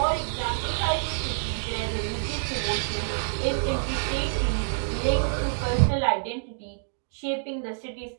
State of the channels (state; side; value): silent; left; digital silence